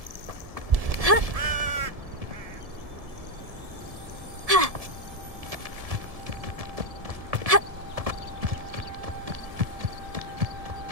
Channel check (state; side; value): late; left; 1.7 ms